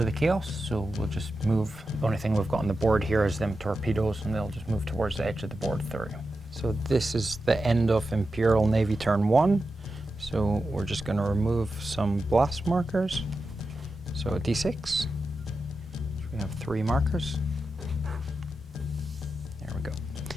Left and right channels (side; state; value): both; normal; correlation 0.90